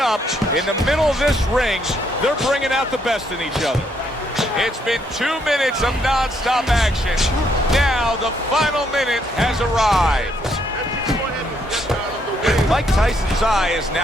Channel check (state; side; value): normal; both; correlation 0.72